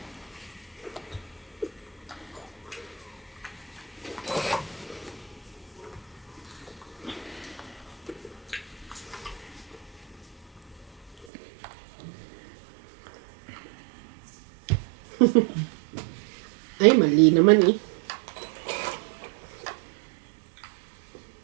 Ay, mali naman eh.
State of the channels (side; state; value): left; drops out; at 11.2 s